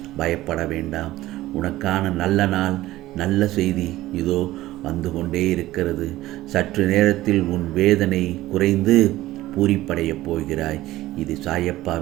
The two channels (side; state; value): left; quieter; 16.3 dB